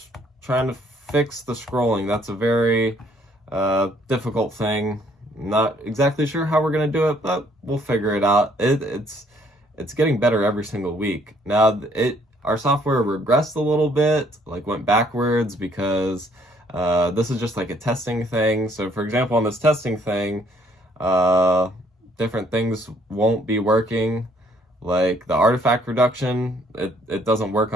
trying to fix the scrolling. That's a very difficult thing. Not exactly sure how we're gonna do it, but we'll figure it out. It's getting better every single week. Now our software regressed a little bit, like went backwards, because this is just like a testing thing. So for example, on this testing thing, different things won't be working. Like the artifact reduction, it doesn't work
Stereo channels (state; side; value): normal; both; correlation 0.64